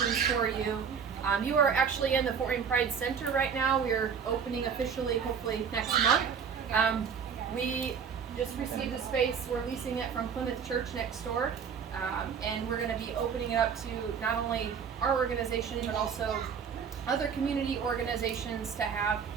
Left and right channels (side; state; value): left; quieter; 6.8 dB